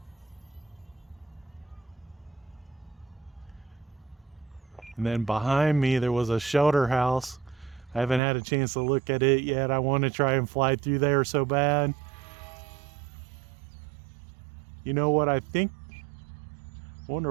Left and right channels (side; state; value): left; drops out; at 8.2 s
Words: And then behind me there was a shelter house. I haven't had a chance to look at it yet. I want to try and fly through there so bad. You know what I think?